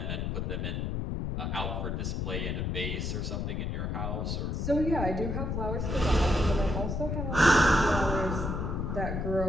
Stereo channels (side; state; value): left; noise; rumble, 1 dB below the sound